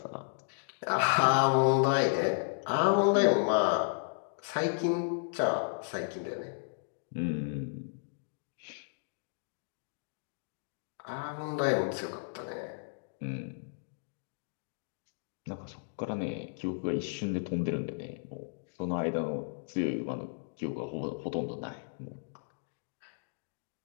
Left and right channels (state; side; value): silent; right; digital silence